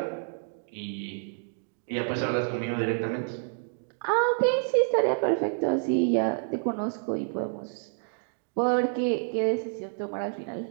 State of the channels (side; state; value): left; silent; 59 dB below the other